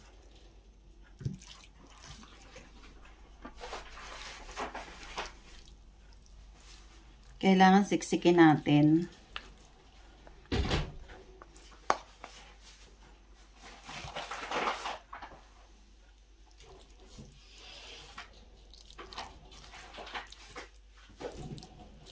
Kailangan siksikin natin.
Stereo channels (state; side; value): identical; both; correlation 1.00